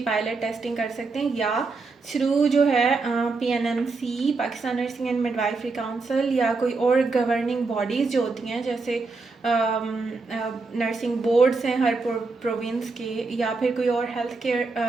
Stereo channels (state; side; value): quieter; left; 4.0 dB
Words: पायलट टेस्टिंग कर सकते हैं, या थ्रू जो है PNMC Pakistan nursing and midwifery council या कोई और गवर्निंग बॉडीज़ जो होती हैं जैसे नर्सिंग बोर्ड्स हैं हर प्रोविंस के, या फिर कोई और हेल्थ